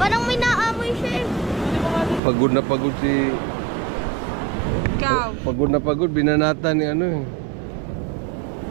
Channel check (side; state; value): left; drops out; at 2.2 s